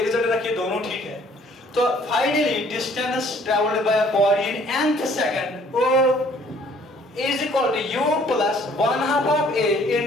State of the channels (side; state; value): both; normal; correlation 0.59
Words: रिजल्ट रखिए, दोनों ठीक है। तो finally distance travelled by a body in nth second is equal to u plus 1/2 of a